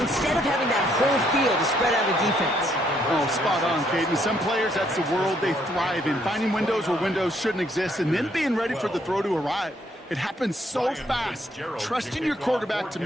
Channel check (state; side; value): normal; both; correlation 0.70